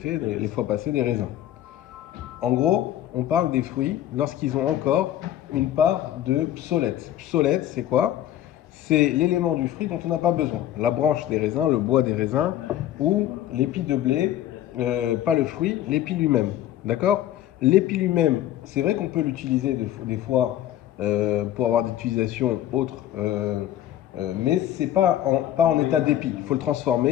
les fois passées, des raisins. En gros, on parle des fruits lorsqu'ils ont encore une part de psolète. Psolète, c'est quoi? C'est l'élément du fruit dont on n'a pas besoin. La branche des raisins, le bois des raisins ou l'épi de blé, pas le fruit, l'épi lui-même. D'accord? L'épi lui-même, c'est vrai qu'on peut l'utiliser des fois pour avoir des utilisations autres, mais c'est pas en état d'épi. Il faut le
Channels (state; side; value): quieter; right; 12.3 dB